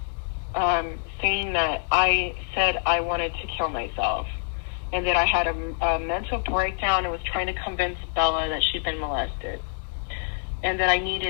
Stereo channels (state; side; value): silent; right; 61 dB below the other